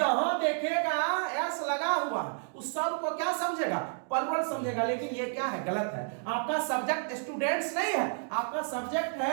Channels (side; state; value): left; silent; 57 dB below the other